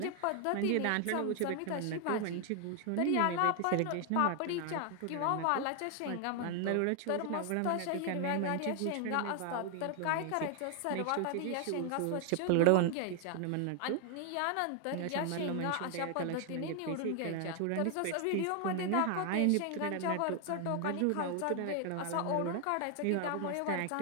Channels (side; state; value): both; different; correlation 0.00